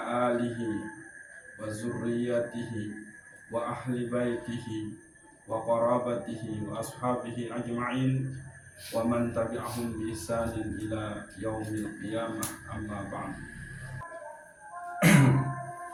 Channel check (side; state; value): both; identical; correlation 1.00